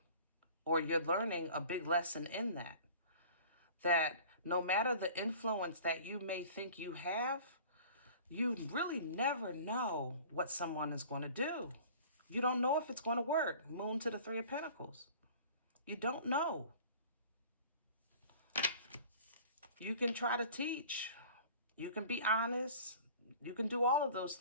or you're learning a big lesson in that, that no matter the influence that you may think you have, you really never know what someone is going to do. You don't know if it's going to work. Moon to the Three of Pentacles. You don't know. You can try to teach. You can be honest. You can do all of those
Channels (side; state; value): both; inverted; correlation -0.45